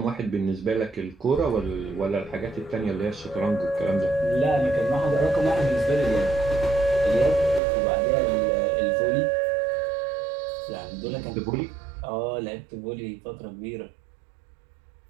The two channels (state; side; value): drops out; left; at 7.6 s